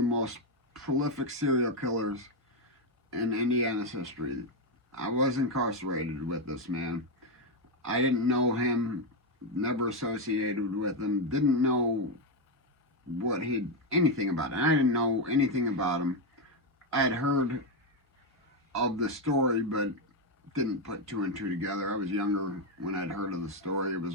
most prolific serial killers in Indiana's history. I was incarcerated with this man. I didn't know him, never associated with him, didn't know anything about it. I didn't know anything about him. I had heard of the story, but didn't put two and two together. I was younger when I'd heard of the story. It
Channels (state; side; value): normal; both; correlation 0.06